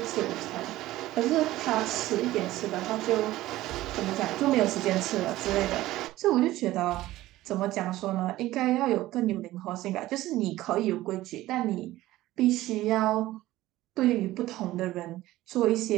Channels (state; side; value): quieter; left; 16.3 dB